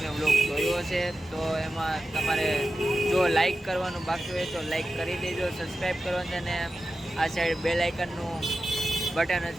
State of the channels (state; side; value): normal; both; correlation 0.93